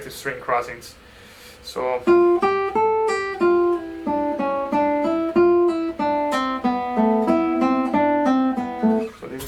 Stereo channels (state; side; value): identical; both; correlation 1.00